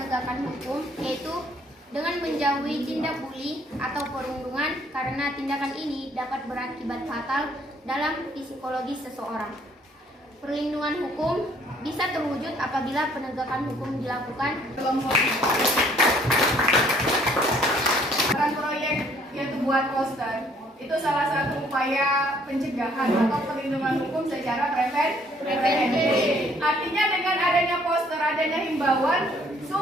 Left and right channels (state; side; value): normal; both; correlation 0.62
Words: hukum yaitu dengan menjauhi tindak bully atau perundungan karena tindakan ini dapat berakibat fatal dalam psikologis seseorang. Perlindungan hukum bisa terwujud apabila penegakan hukum dilakukan. Peran proyek yaitu buat poster itu salah satu upaya pencegahan atau perlindungan hukum secara preventif. Artinya dengan adanya poster, adanya himbauan